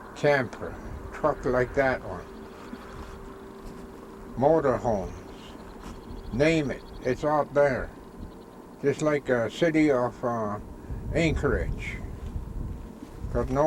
Camper, truck like that one, motorhomes, name it, it's out there. Just like a city of Anchorage. Got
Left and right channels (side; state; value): both; identical; correlation 1.00